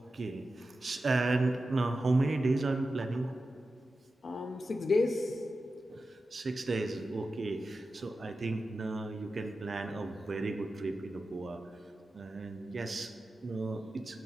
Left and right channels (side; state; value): both; normal; correlation 0.92